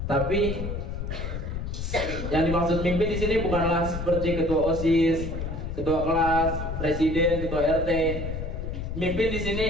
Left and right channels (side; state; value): left; noise; rumble, 5 dB below the sound